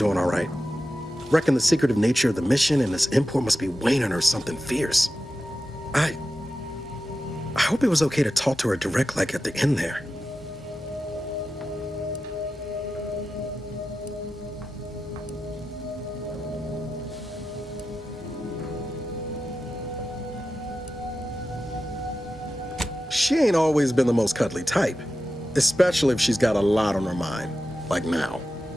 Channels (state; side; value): normal; both; correlation 0.92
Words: all right. Reckon the secretive nature of the mission and this import must be weighing on her something fierce. I hope it was okay to talk to her direct like at the end there. She ain't always been the most cuddly type, especially if she's got a lot on her mind, like now.